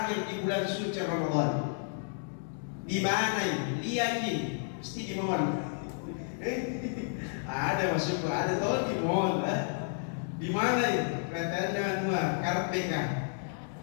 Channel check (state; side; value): silent; right; digital silence